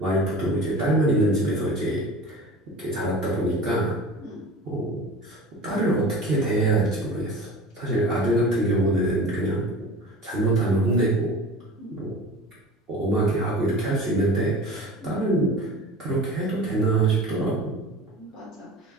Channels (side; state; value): both; normal; correlation 0.37